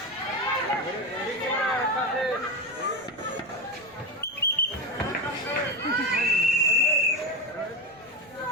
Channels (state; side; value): noise; left; rumble, 30 dB below the sound